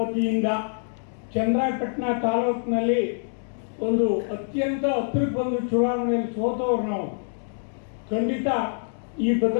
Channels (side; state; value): right; silent; digital silence